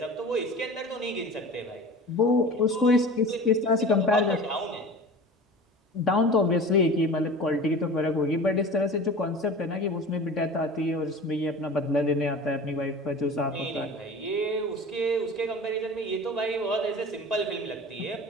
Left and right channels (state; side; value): normal; both; correlation 0.37